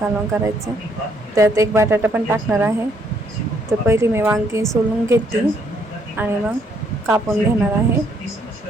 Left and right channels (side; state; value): both; normal; correlation 0.69